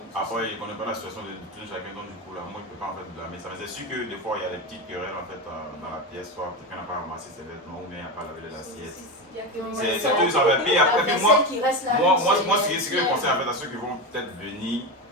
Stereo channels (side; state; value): both; normal; correlation 0.18